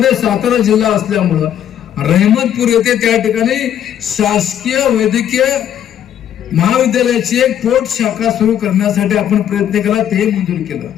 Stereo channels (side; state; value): right; quieter; 10.2 dB